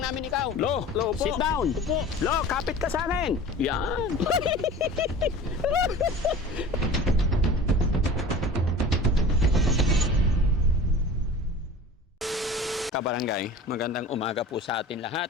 namin ikaw. Lo, sit down. Lo, kapit ka sa akin. Yan. Kabarangay, magandang umaga po sa atin lahat.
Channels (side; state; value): both; normal; correlation 0.39